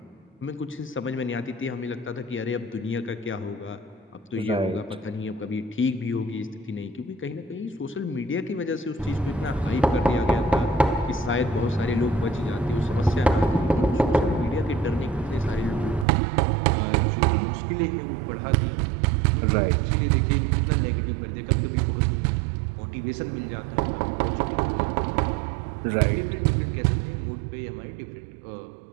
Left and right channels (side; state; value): left; drops out; at 16.1 s